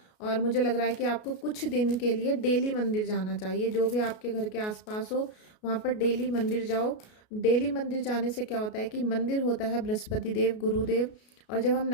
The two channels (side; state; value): right; late; 33 ms